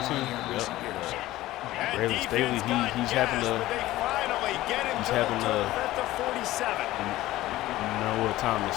here in recent years. Braylon Staley, he's having the Noah Thomas.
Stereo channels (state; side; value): quieter; right; 16.3 dB